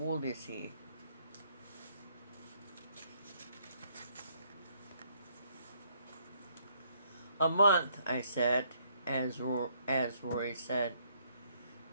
is he?" "A month," I said, as Rory said.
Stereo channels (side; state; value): both; inverted; correlation -0.69